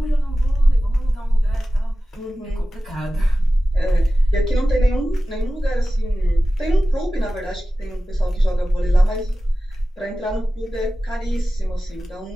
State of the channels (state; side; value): normal; both; correlation 0.95